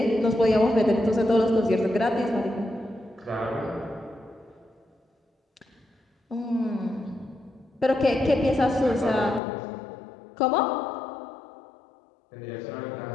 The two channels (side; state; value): right; drops out; at 9.4 s